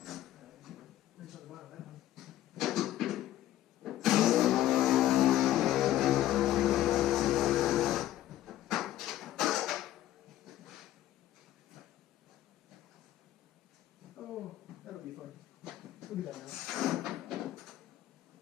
Wrench on the bottom of that one. Oh, that'll be fun. We'll do that now.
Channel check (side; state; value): right; quieter; 13.5 dB